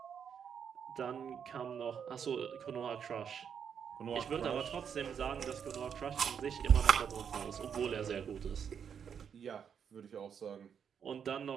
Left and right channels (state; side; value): quieter; left; 7.6 dB